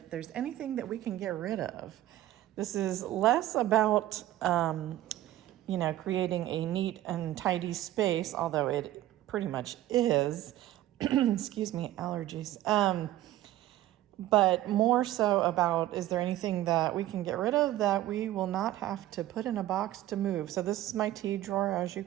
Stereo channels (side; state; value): left; quieter; 14.4 dB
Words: there's anything that we can get rid of. This is less about, creating a neat and tidy space, although it pretty much is. Excuse me, allergies. But more so about, is there anything that we can get rid of that we will not have to put in a box to move? So this is my tea drawer, as you